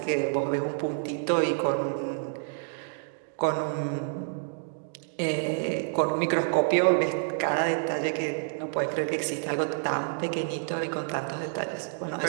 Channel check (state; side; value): silent; left; digital silence